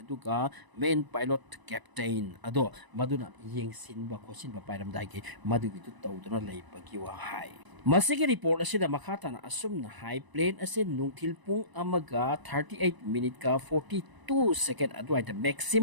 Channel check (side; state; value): left; late; 1.0 ms